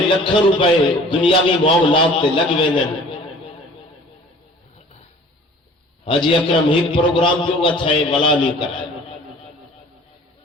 لکھوں روپے دنیاوی معاملات تے لگ ویندن. حاجی اکرم ایک پروگرام جو گا تھا ولا نہیں کرائے.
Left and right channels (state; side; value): normal; both; correlation 0.48